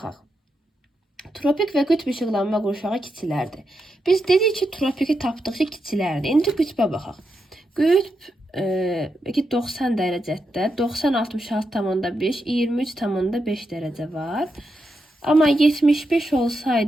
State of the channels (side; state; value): both; normal; correlation 0.85